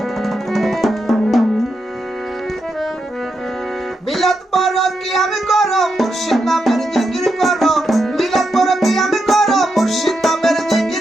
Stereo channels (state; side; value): normal; both; correlation 0.84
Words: মিলাদ পড়ো কিয়াম করো মুর্শিদ নামের জিকির করো মিলাদ পড়ো কিয়াম করো মুর্শিদ নামের